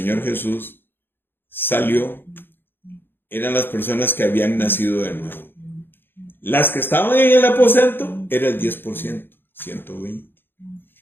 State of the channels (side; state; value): right; late; 0.10 ms